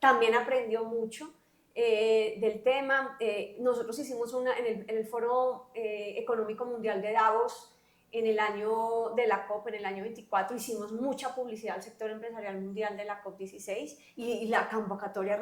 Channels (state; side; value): identical; both; correlation 1.00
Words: aprendió mucho del tema. Nosotros hicimos en el Foro Económico Mundial de Davos, en el año de la COP, en el año 24, hicimos mucha publicidad al sector empresarial mundial de la COP16, y la convocatoria